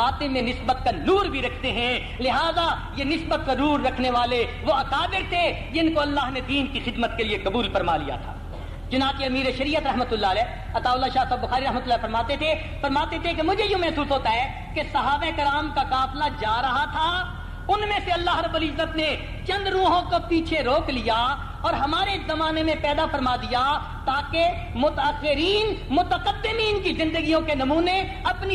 میں نسبت کا نور بھی رکھتے ہیں. لہذا یہ نسبت کا نور رکھنے والے وہ اکابر تھے جن کو اللہ نے دین کی خدمت کے لیے قبول فرما لیا تھا. چنانچہ امیر شریعت رحمۃ اللہ علیہ عطاء اللہ شاہ صاحب بخاری رحمۃ اللہ فرماتے تھے کہ مجھے یوں محسوس ہوتا ہے کہ صحابہ کرام کا قافلہ جا رہا تھا, ان میں سے اللہ رب العزت نے چند روحوں کو پیچھے روک لیا اور ہمارے زمانے میں پیدا فرما دیا تاکہ متأخرین متقدمین کی زندگیوں کے نمونے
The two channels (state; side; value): identical; both; correlation 1.00